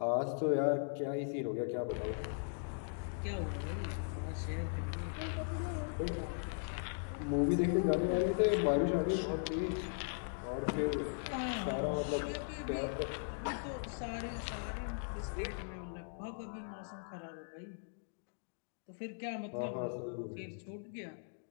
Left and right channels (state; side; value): silent; right; digital silence